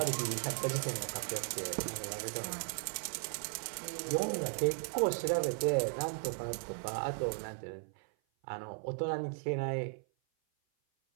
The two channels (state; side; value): silent; left; 53 dB below the other